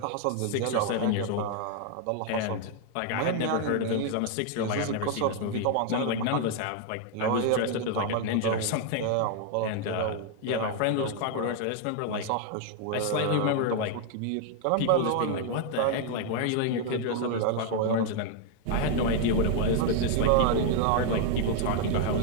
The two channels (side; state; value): both; different; correlation 0.00